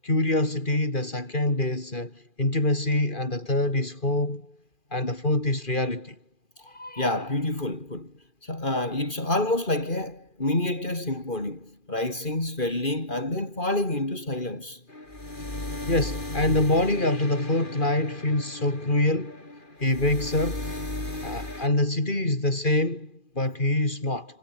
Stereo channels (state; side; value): late; right; 2.4 ms